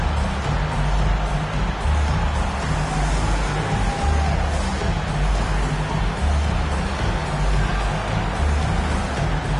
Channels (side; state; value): both; identical; correlation 1.00